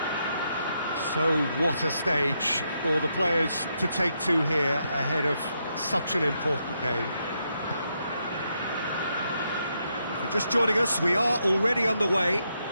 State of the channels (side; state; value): both; inverted; correlation -0.80